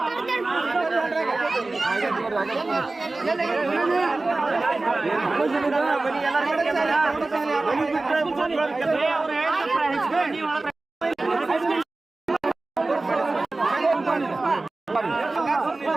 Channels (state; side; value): quieter; left; 3.2 dB